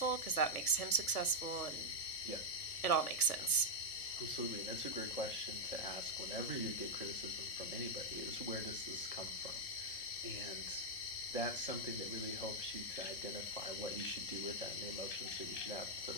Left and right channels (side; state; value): right; late; 1.2 ms